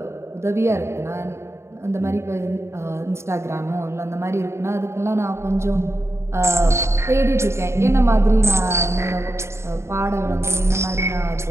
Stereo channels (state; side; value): late; left; 0.13 ms